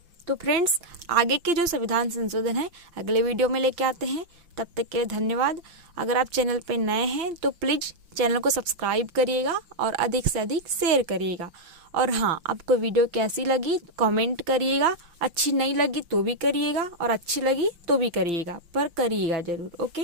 तो फ्रेंड्स आगे के जो संविधान संशोधन है अगले वीडियो में लेके आते हैं। तब तक के लिए धन्यवाद। अगर आप चैनल पे नए हैं तो प्लीज चैनल को सब्सक्राइब करिएगा और अधिक से अधिक शेयर करिएगा। और हाँ, आपको वीडियो कैसी लगी कमेंट करिएगा। अच्छी नहीं लगी तो भी करिएगा, और अच्छी लगी तो भी करिएगा, पर करिएगा जरूर।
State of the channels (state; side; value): late; left; 5.8 ms